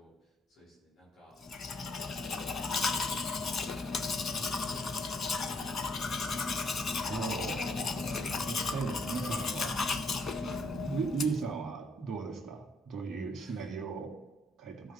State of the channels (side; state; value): both; normal; correlation 0.68